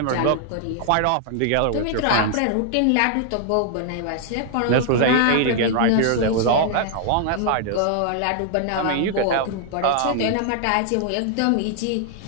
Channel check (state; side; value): different; both; correlation 0.00